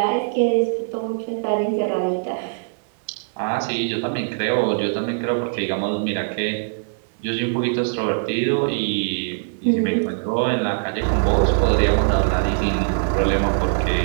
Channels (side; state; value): left; silent; digital silence